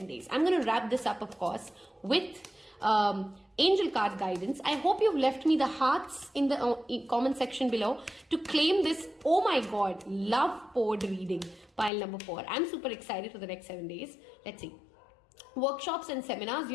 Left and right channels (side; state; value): right; drops out; at 11.9 s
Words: days. I'm going to wrap this up, of course, with angel card guidance. I hope you've left me the hearts in the comment section below to claim this, oh my god, love poured reading, pile number 4. I'm super excited for the next 7 days. Let's see. Workshops and seminars,